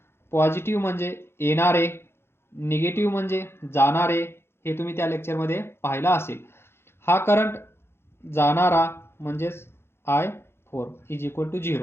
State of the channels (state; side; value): late; right; 0.12 ms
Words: पॉझिटिव्ह म्हणजे येणारे, निगेटिव्ह म्हणजे जाणारे, हे तुम्ही त्या लेक्चरमध्ये पाहिलं असेल. हा करंट जाणारा म्हणजेच I4 इज इक्वल टू